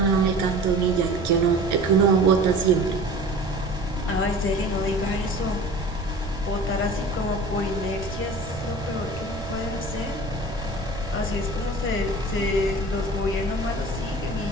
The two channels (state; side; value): noise; right; rumble, 11 dB below the sound